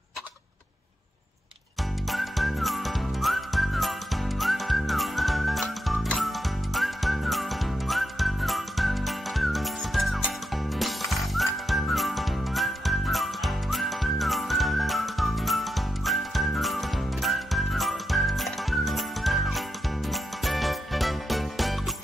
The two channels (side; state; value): both; normal; correlation 0.85